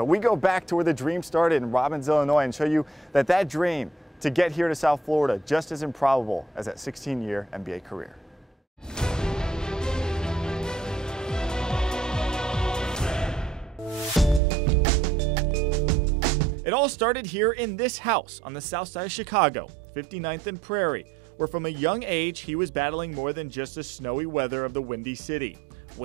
we go back to where the dream started in Robbins, Illinois, and show you that dream to get here to South Florida just as improbable as that 16-year NBA career. It all started here in this house on the south side of Chicago, 59th and Prairie, where from a young age he was battling more than just the snowy weather of the Windy City.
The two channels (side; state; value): left; drops out; at 14.4 s